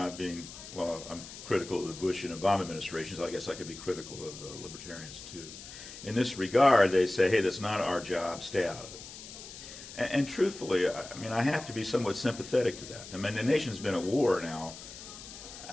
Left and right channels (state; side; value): noise; left; hiss, 14 dB below the sound